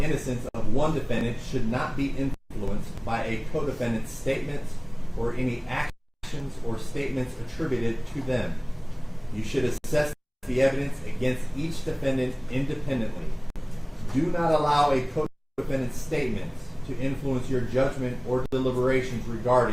of one defendant should not be influenced by a co-defendant's statements or any actions or statements attributed to them. You should assess the evidence against each defendant independently. Do not allow a co-defendant's statements to influence your judgment or deliberations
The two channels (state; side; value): identical; both; correlation 1.00